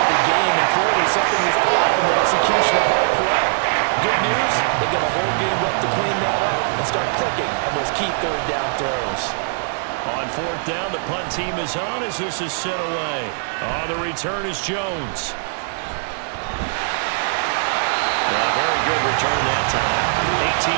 the game, and clearly something was off in the execution of that play. Good news, they got a whole game left to clean that up and start clicking on those key third down throws. On 4th down, the punt team is on as this is sent away. On the return is Jones. Well, very good return that time. 18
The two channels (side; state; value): left; silent; digital silence